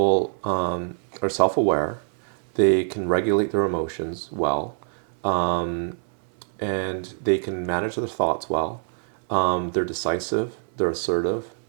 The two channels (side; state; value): left; silent; 62 dB below the other